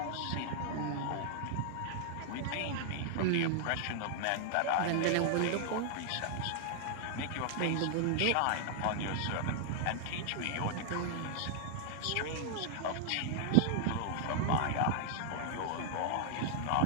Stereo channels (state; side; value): different; both; correlation 0.00